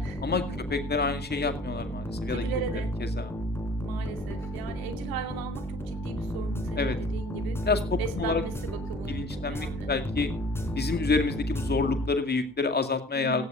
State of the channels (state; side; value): normal; both; correlation 0.49